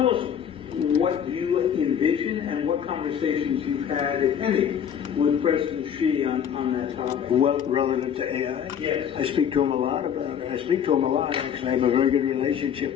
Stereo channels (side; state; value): right; quieter; 8.5 dB